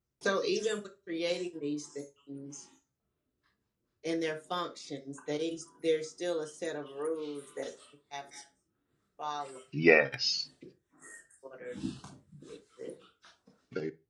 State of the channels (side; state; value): both; identical; correlation 1.00